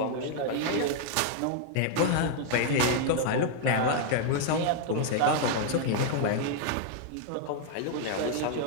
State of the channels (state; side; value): different; both; correlation 0.00